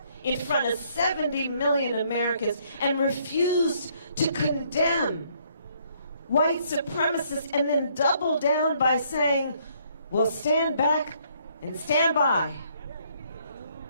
in front of 70 million Americans and refused to condemn white supremacists and then doubled down by saying, well, stand back and stand by.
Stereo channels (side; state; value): both; inverted; correlation -0.67